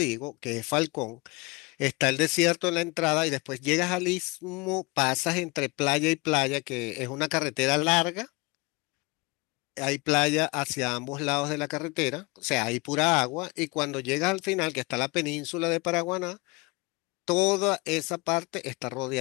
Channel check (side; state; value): right; quieter; 26.1 dB